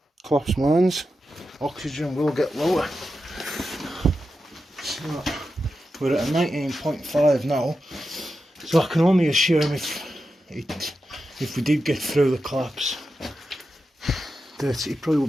collapsed mines, oxygen will get lower. So we're at a 19.5 now, so I can only assume if we did get through the collapse, that it probably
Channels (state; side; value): normal; both; correlation 0.90